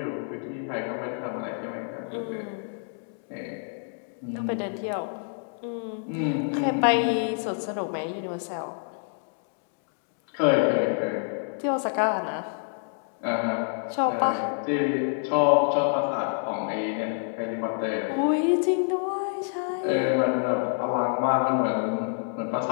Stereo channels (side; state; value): right; silent; 60 dB below the other